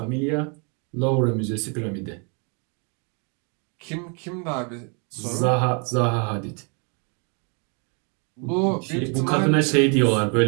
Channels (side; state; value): left; quieter; 36.4 dB